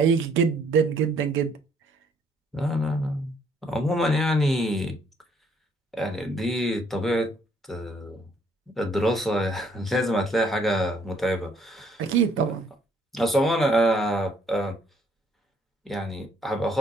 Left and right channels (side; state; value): both; normal; correlation 0.65